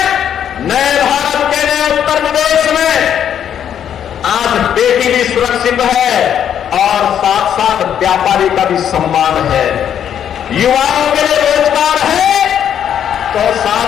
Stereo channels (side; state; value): right; quieter; 9.3 dB